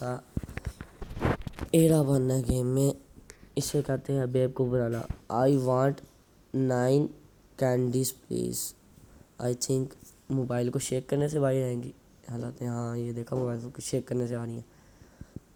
ایڑا بننا ہے گیم میں. اسے کہتے ہیں بیب کو بنانا. I want 9 candies please. I think mobile کو شیک کرنے سے بھائی آئیں گی حالات. ہاں یہ دیکھا موبائل کو شیک کرنے سے آ رہی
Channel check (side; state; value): both; identical; correlation 1.00